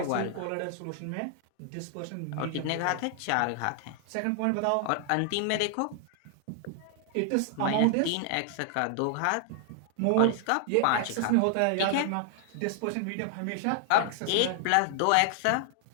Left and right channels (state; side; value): different; both; correlation 0.00